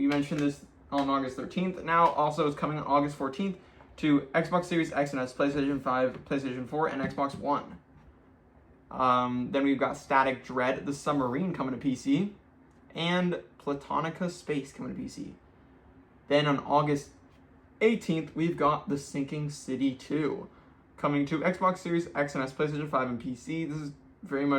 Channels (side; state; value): both; identical; correlation 1.00